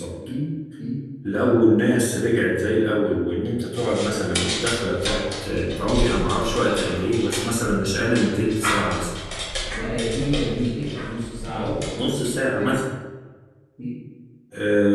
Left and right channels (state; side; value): identical; both; correlation 1.00